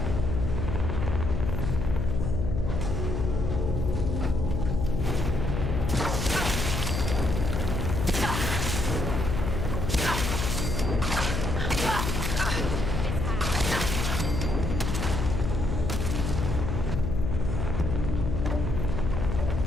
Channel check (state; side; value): noise; left; hum, 1 dB below the sound